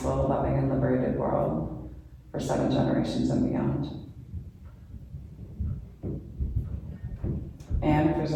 loving, and liberated world for 7 generations and beyond. And if there's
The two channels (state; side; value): identical; both; correlation 1.00